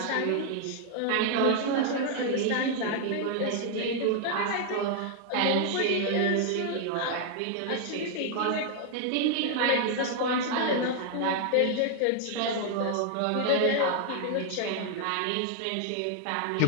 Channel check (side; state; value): both; different; correlation 0.00